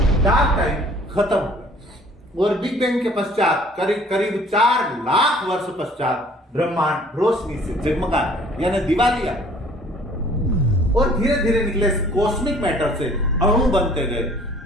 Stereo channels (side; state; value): both; normal; correlation 0.54